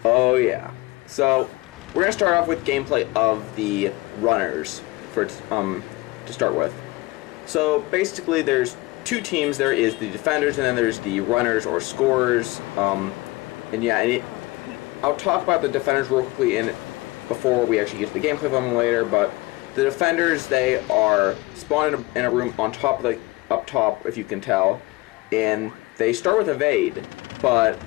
Oh yeah. So, we're going to start off with gameplay of the runners to start with. So, basically there's two teams. There is the defenders and then there's the runners or scorers. I'll talk about the defenders real quickly before we actually get to the gameplay of them later, but the defenders, they are spawned in a room on top, like up top, if you can tell, and they start with evade, but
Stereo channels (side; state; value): right; quieter; 21.6 dB